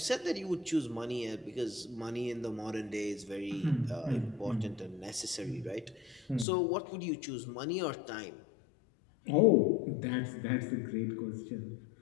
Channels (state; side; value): drops out; right; at 6.5 s